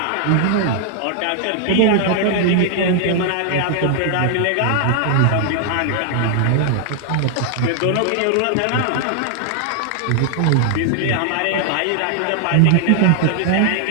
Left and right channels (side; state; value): both; different; correlation 0.00